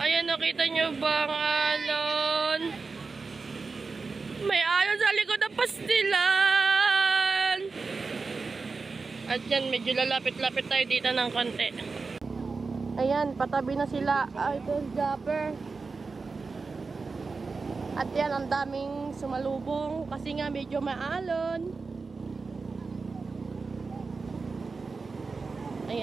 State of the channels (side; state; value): left; quieter; 4.3 dB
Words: nakita nyo ba ang alon? May alon sa likod ng pastilan. At yan, medyo lalapit-lapit tayo dito ng konti. Ayan, patabi na sila, Idol Japper. At yan, ang daming sumalubong kasi nga medyo maalon.